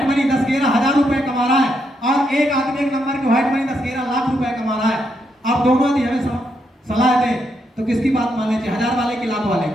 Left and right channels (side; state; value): both; normal; correlation 0.79